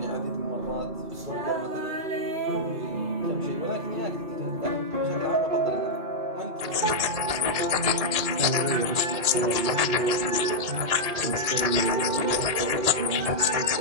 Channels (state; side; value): late; left; 1.8 ms